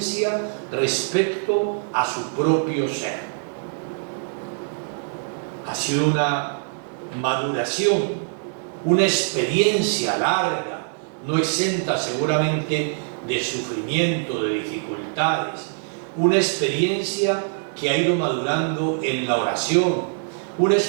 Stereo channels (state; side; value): silent; left; digital silence